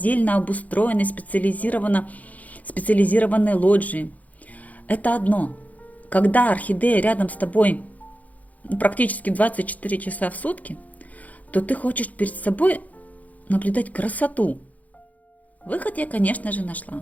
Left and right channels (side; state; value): right; late; 0.076 ms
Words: обустроенной специализированной лоджии. Это одно. Когда орхидея рядом с тобой практически 24 часа в сутки, то ты хочешь перед собой наблюдать красоту. Выход я, конечно же,